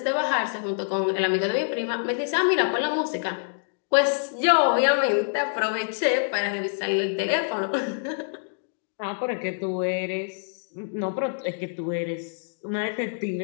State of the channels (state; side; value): silent; right; digital silence